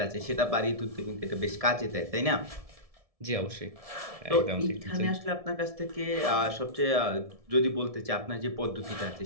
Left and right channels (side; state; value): left; late; 1.7 ms